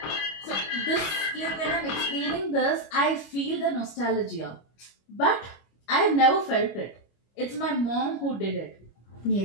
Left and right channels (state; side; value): late; right; 25 ms